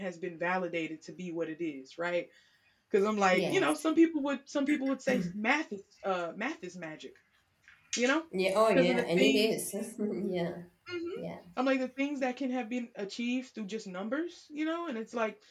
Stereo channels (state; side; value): identical; both; correlation 1.00